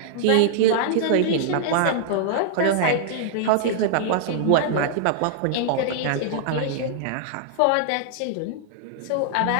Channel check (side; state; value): both; different; correlation -0.01